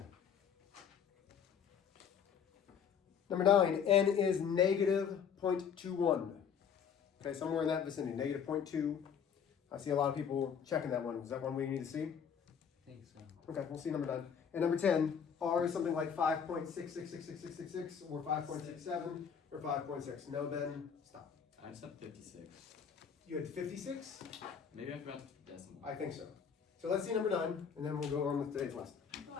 Number 9. N is negative 0.21. Okay, somewhere in that vicinity. Negative 0.2. I see a lot of people checking that one. Is that one we need to see? I think so. Okay, we'll see number 9. And number 10, R is something like 5.666666 or 5.67 or 5.6. No, Ben, stop. I just have 56. You had 56? Maybe I forgot the decimal. I think so. So let's see number 9, and then we'll go on with today's lesson. I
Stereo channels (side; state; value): right; quieter; 7.3 dB